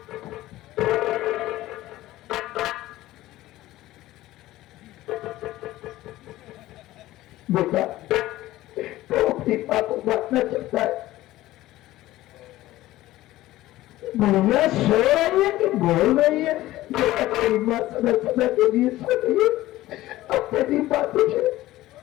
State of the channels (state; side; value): quieter; right; 16.2 dB